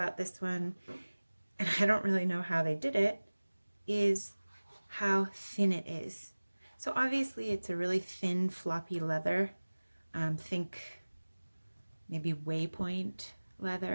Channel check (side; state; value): both; inverted; correlation -1.00